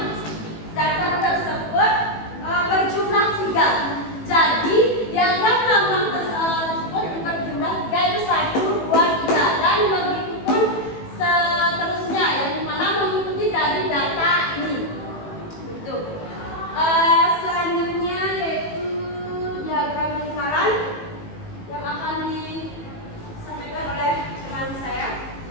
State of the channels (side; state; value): right; late; 18 ms